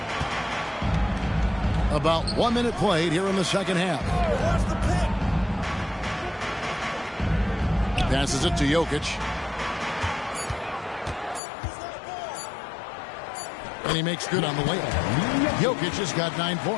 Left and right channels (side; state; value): right; drops out; at 11.4 s